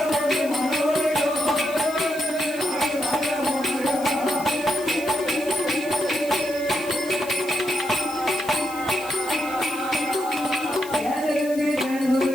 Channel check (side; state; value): left; noise; hiss, 16 dB below the sound